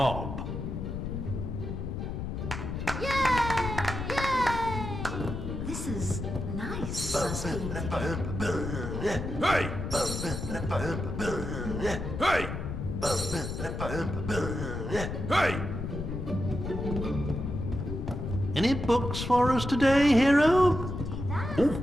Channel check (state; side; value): noise; left; rumble, 5 dB below the sound